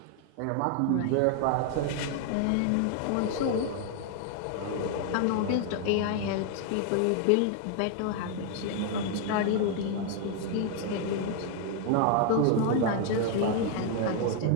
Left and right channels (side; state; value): both; different; correlation 0.00